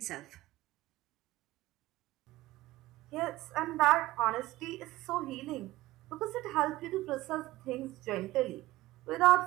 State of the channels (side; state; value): left; quieter; 17.8 dB